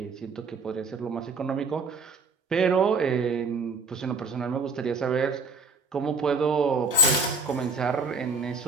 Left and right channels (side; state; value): left; quieter; 3.5 dB